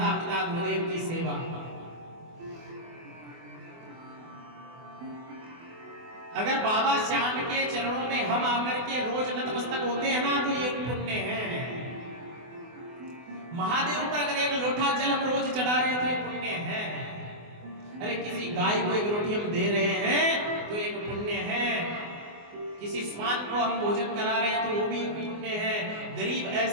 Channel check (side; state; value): left; late; 24 ms